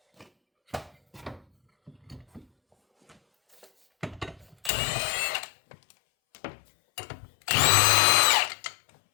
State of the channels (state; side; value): drops out; right; at 4.7 s